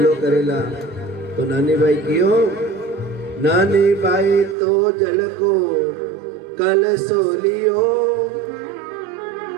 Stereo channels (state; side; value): drops out; left; at 4.5 s